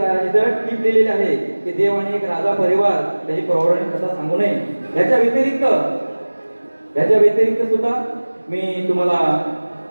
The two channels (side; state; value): both; inverted; correlation -1.00